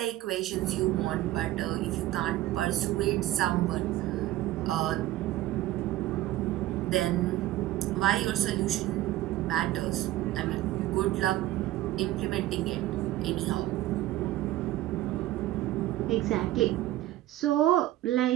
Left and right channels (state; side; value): quieter; left; 15.3 dB